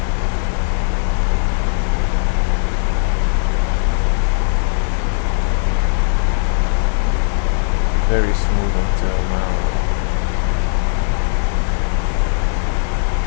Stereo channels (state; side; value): silent; right; 68 dB below the other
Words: Very smooth until now.